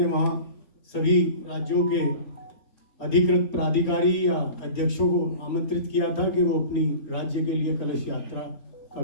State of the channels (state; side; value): late; right; 4.3 ms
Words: वहाँ सभी राज्यों के अधिकृत प्राधिकारी या अध्यक्षों को आमंत्रित किया था कि वो अपनी राज्य के लिए कलश यात्रा